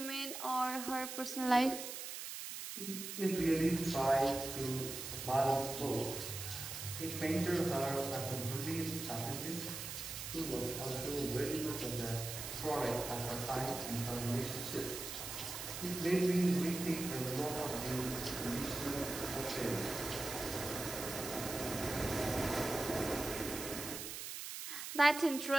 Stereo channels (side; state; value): right; noise; hiss, 7 dB below the sound